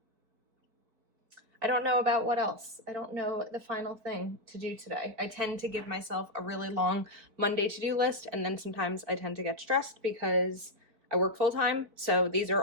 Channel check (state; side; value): late; left; 4.7 ms